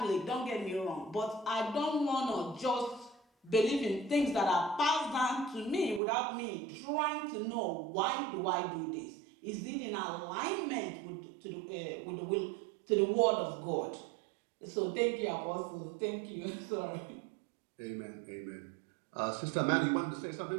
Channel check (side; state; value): left; drops out; at 6.0 s